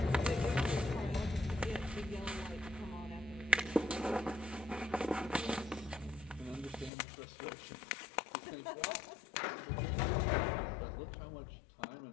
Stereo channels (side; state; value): right; drops out; at 6.9 s